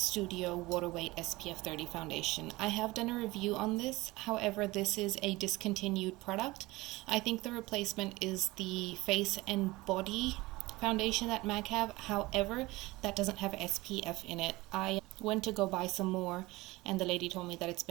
Water Weight SPF 30 foundation. I have done a review on this, however this is a discontinued product. I think the replacement is the Face and Body foundation that MAC have, however that doesn't have SPF in it. I went to go buy some more and the lady told me that it's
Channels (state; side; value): quieter; left; 20.8 dB